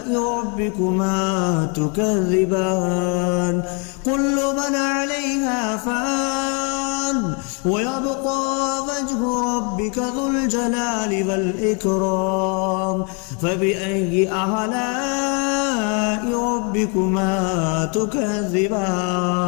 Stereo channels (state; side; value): quieter; right; 36.2 dB